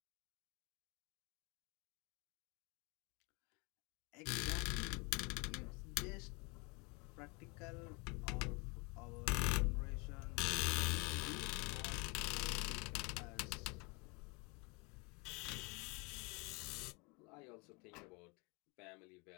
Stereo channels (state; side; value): quieter; right; 29.7 dB